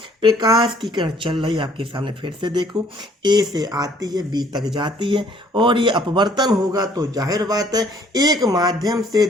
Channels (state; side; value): normal; both; correlation 0.60